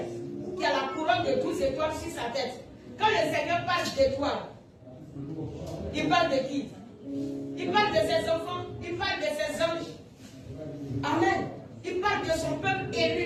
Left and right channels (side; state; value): both; identical; correlation 1.00